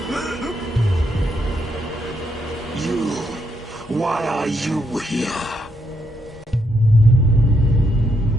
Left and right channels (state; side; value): normal; both; correlation 0.77